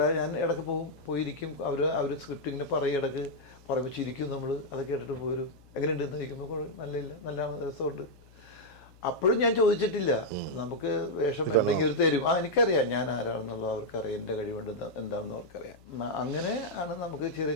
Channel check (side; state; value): left; noise; hum, 25 dB below the sound